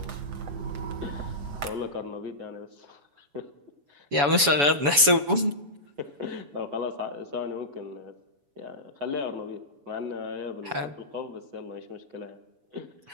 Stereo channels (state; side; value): late; left; 7.0 ms